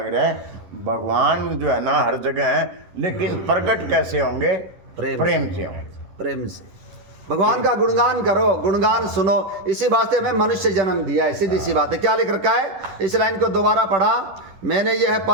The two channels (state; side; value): late; left; 10 ms